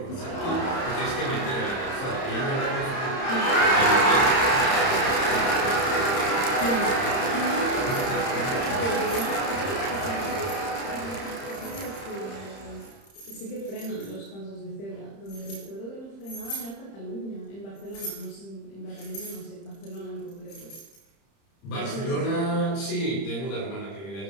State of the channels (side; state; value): right; late; 30 ms